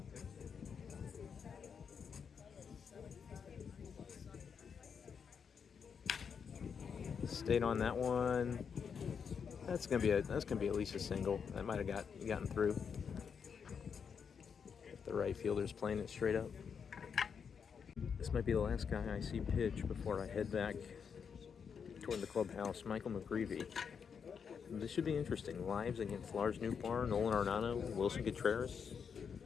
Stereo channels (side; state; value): right; quieter; 6.6 dB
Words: Stayed on that one. That's gonna be at least a single. That might have gotten through. The right fielder's playing it straight up. This might be the last guy I see pitch before I head back toward the clubhouse. Michael McGreevy. This should be interesting. Lives against Lars Nootbaar, Nolan Arenado, Willson Contreras.